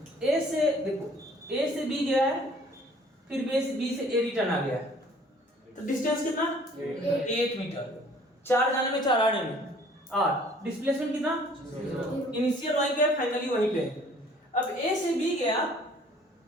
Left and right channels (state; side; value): normal; both; correlation 0.55